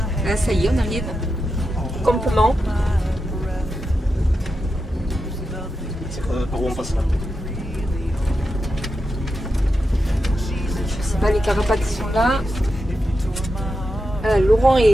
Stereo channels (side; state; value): both; normal; correlation 0.88